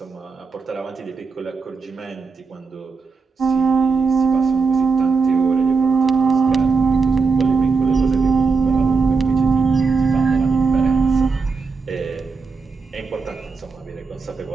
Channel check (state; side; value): quieter; left; 4.7 dB